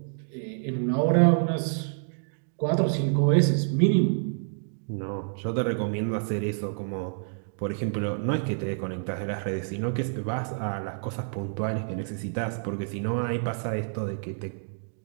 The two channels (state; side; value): silent; left; digital silence